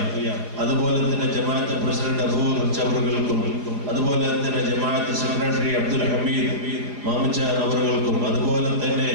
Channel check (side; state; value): left; late; 4.9 ms